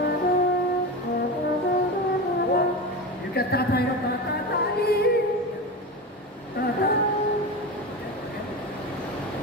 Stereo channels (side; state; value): both; normal; correlation 0.23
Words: You can tatay na tatatay. Tata.